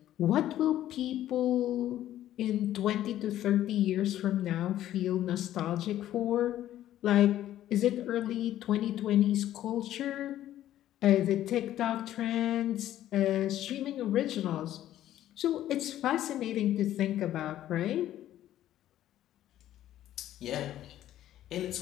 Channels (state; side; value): quieter; right; 12.7 dB